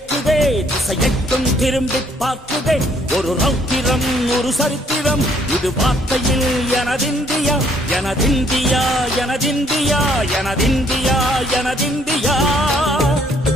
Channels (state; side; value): normal; both; correlation 0.65